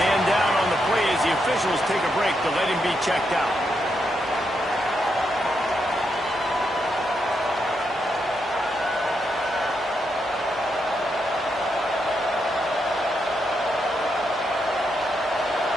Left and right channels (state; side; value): normal; both; correlation 0.81